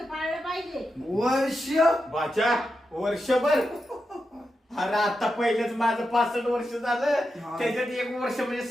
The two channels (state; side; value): normal; both; correlation 0.88